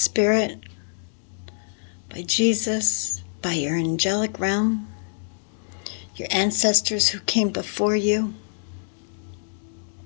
by Jesus, by your angelic realm, your ancestors who came before you.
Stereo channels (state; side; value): silent; right; digital silence